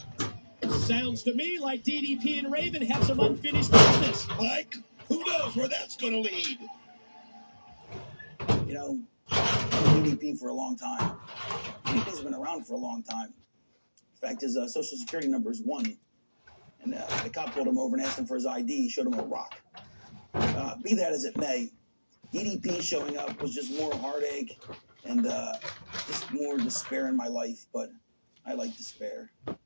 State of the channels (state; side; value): inverted; both; correlation -1.00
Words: Sounds to me like DDP and Raven have some unfinished business. Mike, who knows where that's going to lead? You know, I've been DDP for a long time. DDP's been around for a long time. In fact, his social security number is 1. And the cop pulled him over and asked him for his ID. He showed him a rock. Be that as it may, DDP showing up was just more heartache and just more despair in my life. But I like despair.